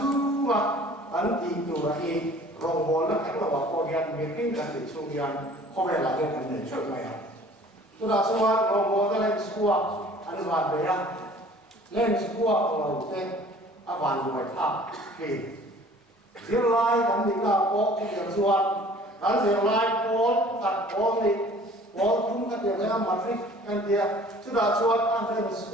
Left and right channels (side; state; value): both; normal; correlation 0.50